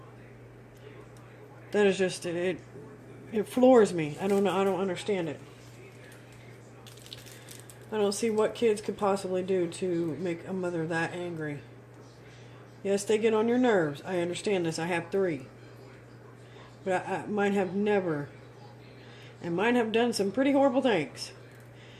That is just... It floors me. I don't know. I don't understand it. I don't see what kids could possibly do to make a mother that angry. Yes, they get on your nerves. I understand this. I have 3. But mine have never. And mine have done some pretty horrible things.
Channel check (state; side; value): identical; both; correlation 1.00